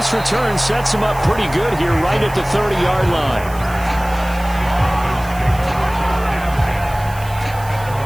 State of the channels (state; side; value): noise; right; hiss, 18 dB below the sound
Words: return sets him up pretty good here right at the 30-yard line.